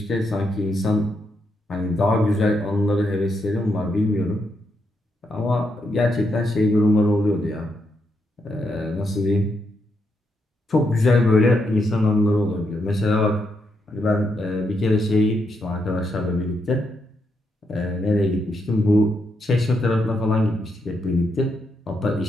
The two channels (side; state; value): both; normal; correlation 0.81